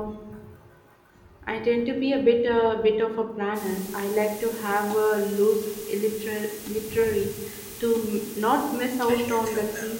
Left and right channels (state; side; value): identical; both; correlation 1.00